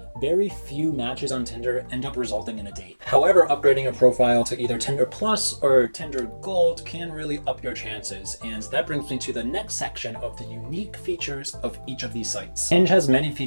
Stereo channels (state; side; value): inverted; both; correlation -1.00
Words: very few matches on Tinder end up resulting in a date. However, upgrading a profile to either Tinder Plus or Tinder Gold can really up your chances, and that brings me to the next section of the unique features of each of these sites. Hinge has many